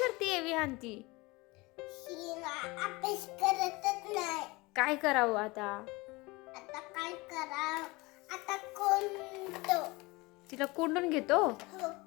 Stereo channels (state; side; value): quieter; right; 23.5 dB